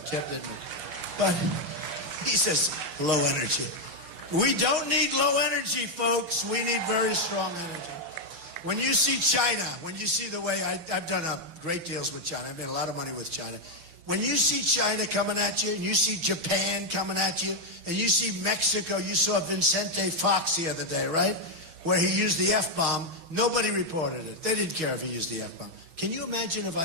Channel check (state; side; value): late; left; 6.2 ms